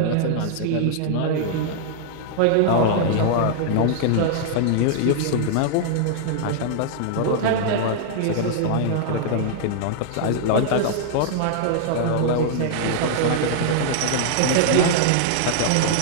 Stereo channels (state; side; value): different; both; correlation -0.01